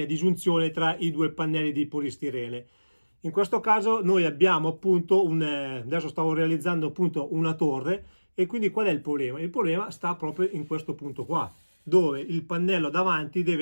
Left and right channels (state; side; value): inverted; both; correlation -1.00